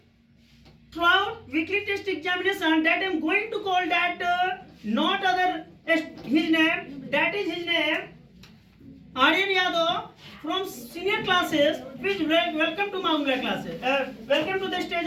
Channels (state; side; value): identical; both; correlation 1.00